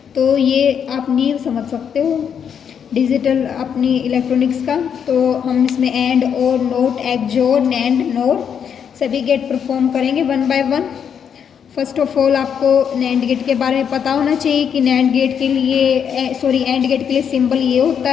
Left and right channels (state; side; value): quieter; right; 7.8 dB